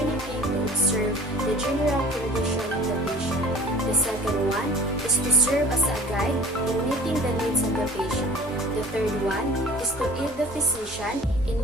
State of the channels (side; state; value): both; normal; correlation 0.46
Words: to observe the general condition of the patient. The second one is to serve as a guide in meeting the needs of the patient. The third one is to aid the physician in